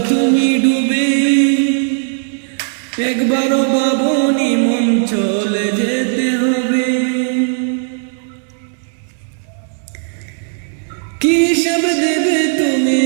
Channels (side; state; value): left; silent; digital silence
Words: তুমি ডুবে, একবারও ভাবনি মন চলে যেতে হবে। কি সব দেবে তুমি